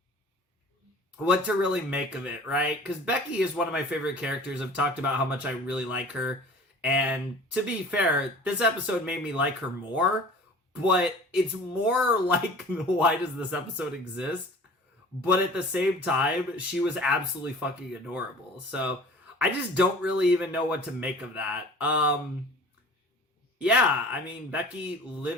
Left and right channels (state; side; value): normal; both; correlation 0.44